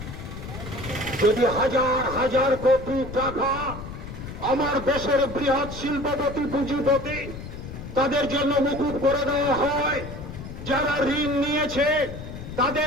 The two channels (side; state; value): left; noise; rumble, 10 dB below the sound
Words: যদি হাজার হাজার কোটি টাকা আমার দেশের বৃহৎ শিল্পপতি, পুঁজিপতি তাদের জন্য মুকুব করে দেওয়া হয়, যারা ঋণ নিয়েছে